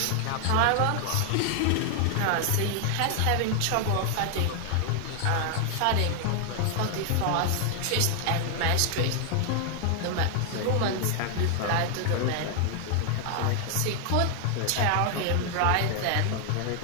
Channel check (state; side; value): different; both; correlation 0.00